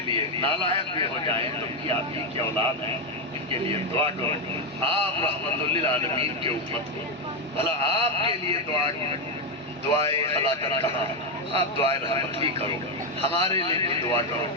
لیے نالائق بھی ہو جائیں تو بھی آپ ہی کی اولاد ہیں، ان کے لیے دعا کرو۔ آپ رحمت للعالمین کے امت کو بھلا آپ کے لیے دعائے ہلاکت کہاں، آپ دعائے رحمت ہی کرو، ہمارے لیے بھی دعا کرو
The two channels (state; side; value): normal; both; correlation 0.06